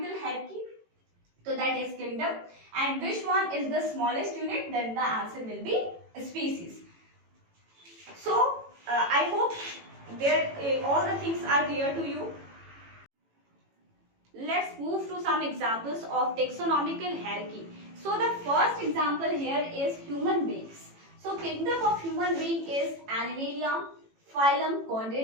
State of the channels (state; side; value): late; left; 18 ms